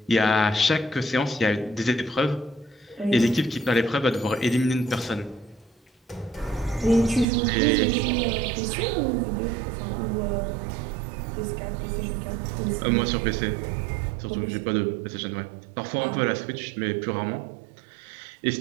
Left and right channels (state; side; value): drops out; left; at 7.2 s